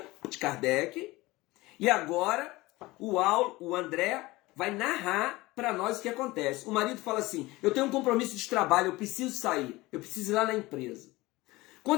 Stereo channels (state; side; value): quieter; right; 20.4 dB